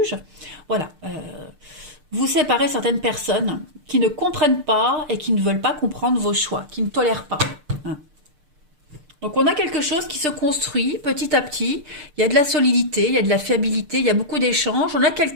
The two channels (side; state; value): left; late; 6.6 ms